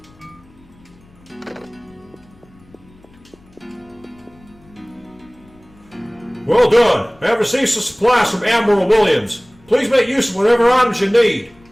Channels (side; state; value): left; noise; rumble, 28 dB below the sound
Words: Well done! I have received some supplies from Admiral Williams. Please make use of whatever items you need.